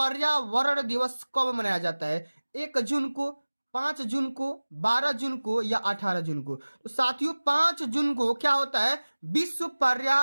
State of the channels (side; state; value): both; inverted; correlation -1.00